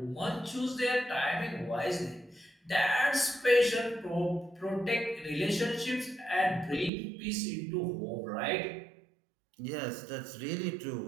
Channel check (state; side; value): drops out; left; at 6.9 s